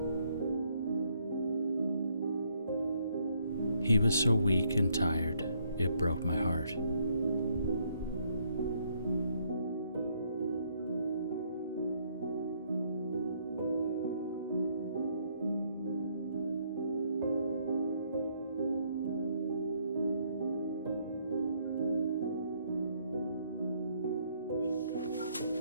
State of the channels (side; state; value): both; inverted; correlation -0.70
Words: He was so weak and tired, it broke my heart.